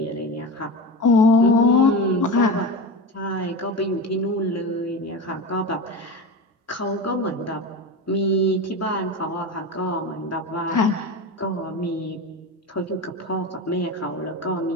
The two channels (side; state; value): both; normal; correlation 0.25